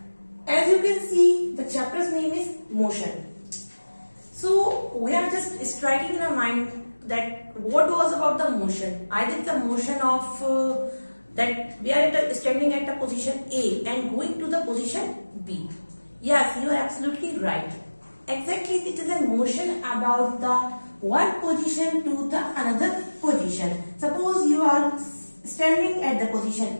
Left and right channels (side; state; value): both; inverted; correlation -1.00